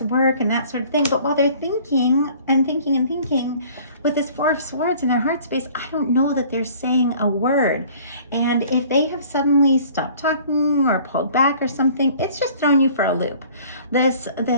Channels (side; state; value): both; inverted; correlation -0.51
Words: work and that sort of thing. But while they're thinking and thinking and thinking, with this Four of Swords in their heart space, I don't know that they're saying a word. And if they have suddenly stopped talking or pulled back or something, it's just throwing you for a loop. This